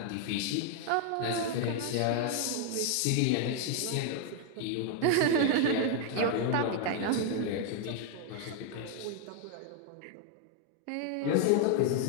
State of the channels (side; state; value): both; different; correlation 0.00